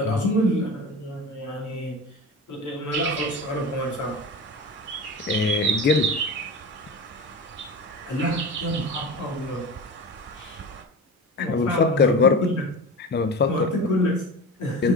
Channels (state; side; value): normal; both; correlation 0.31